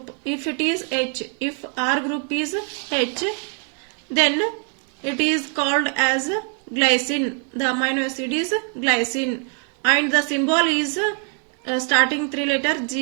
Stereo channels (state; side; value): quieter; left; 39.7 dB